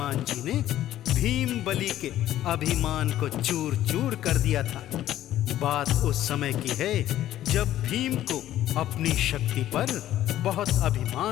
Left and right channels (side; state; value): right; quieter; 12.9 dB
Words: जी ने भीम बलि के अभिमान को चूर चूर कर दिया था। बात उस समय की है जब भीम को अपनी शक्ति पर बहुत